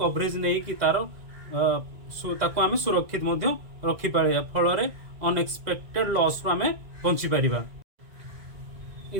नहीं कि तार ताकू आमे सुरक्षित मध्य रखि पारिबा। फल अनएक्सपेक्टेड लॉस रो आमे बंची पारिबा।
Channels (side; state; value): left; late; 2.0 ms